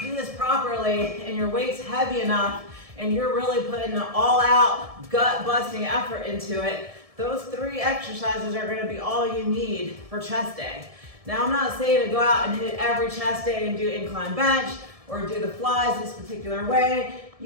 this properly and your weight's heavy enough and you're really putting an all-out, gut-busting effort into it, those 3 exercises are gonna be all you need for chest day. Now, I'm not saying to go out and hit every chest day and do incline bench or do the flies this particular way.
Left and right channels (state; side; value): late; left; 1.7 ms